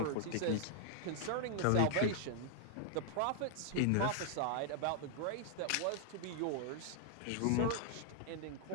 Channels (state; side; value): different; both; correlation 0.00